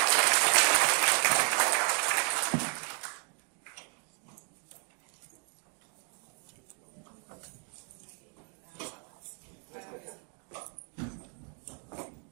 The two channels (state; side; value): quieter; left; 39.8 dB